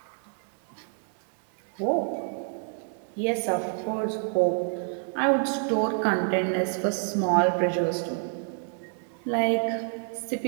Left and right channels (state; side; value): silent; left; 59 dB below the other